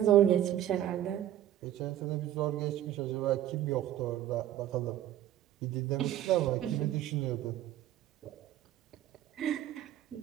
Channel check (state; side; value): quieter; left; 12.2 dB